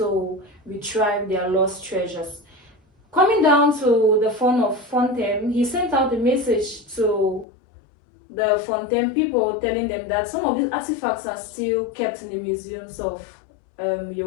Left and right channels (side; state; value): right; drops out; at 7.5 s